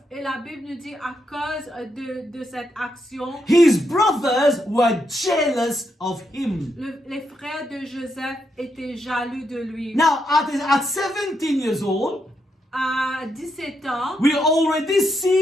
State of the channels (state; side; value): normal; both; correlation 0.80